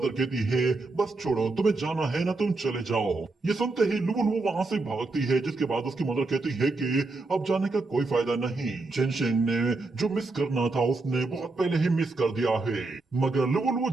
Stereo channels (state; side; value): quieter; left; 3.4 dB